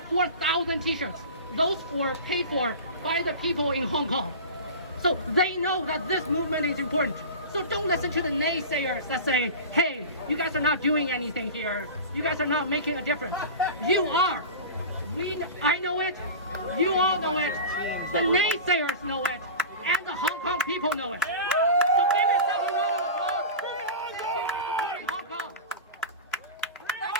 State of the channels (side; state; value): both; inverted; correlation -0.31